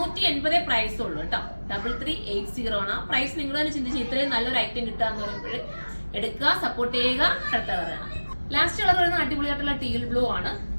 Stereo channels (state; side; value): inverted; both; correlation -1.00